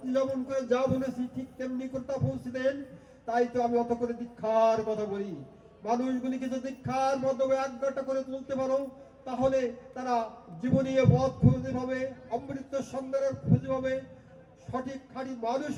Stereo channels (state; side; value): identical; both; correlation 1.00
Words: করে যা বলেছি ঠিক তেমনি করে তা পৌঁছে দেন। তাই তো আমি অত করে দীক্ষার কথা বলি। মানুষগুলিকে যদি দীক্ষার মাধ্যমে একঘাটা করে তুলতে পারো, তাহলে তারা জীবনী পথ খুঁজে পাবে, অমৃত সন্ধানের খুঁজে পাবে, সঠিক খাঁটি মানুষ